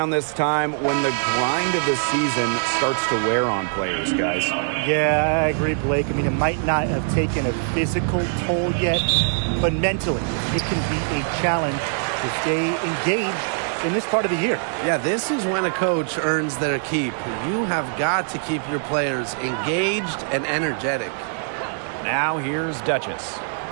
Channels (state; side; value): silent; left; 64 dB below the other